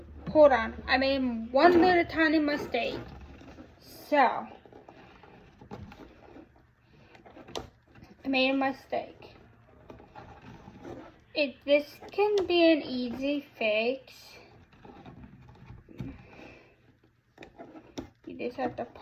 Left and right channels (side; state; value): both; identical; correlation 1.00